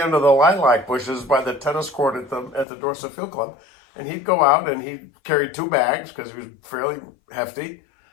the lilac bushes by the tennis court at the Dorset Field Club, and he'd go out and he'd carry 2 bags because he was fairly hefty.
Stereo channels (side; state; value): right; drops out; at 2.7 s